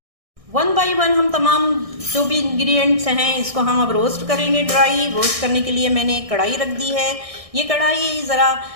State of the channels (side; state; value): left; late; 1.6 ms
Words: 1 बाय 1 हम तमाम जो भी इंग्रेडिएंट्स हैं इसको हम अब रोस्ट करेंगे। ड्राई रोस्ट करने के लिए मैंने एक कढ़ाई रख दी है। ये कढ़ाई ज़रा